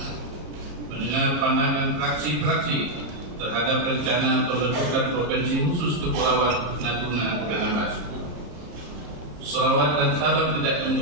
mendengar pandangan fraksi-fraksi terhadap rencana pembentukan Provinsi Khusus Kepulauan Natuna Anambas. Salawat dan salam tidak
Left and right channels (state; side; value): late; left; 34 ms